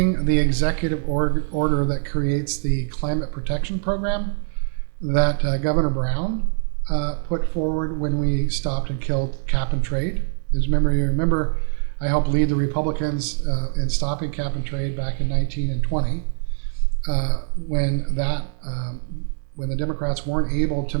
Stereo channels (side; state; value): left; silent; digital silence